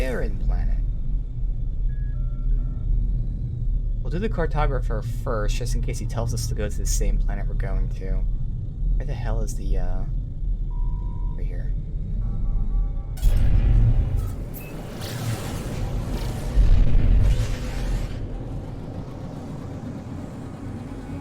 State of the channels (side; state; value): both; identical; correlation 1.00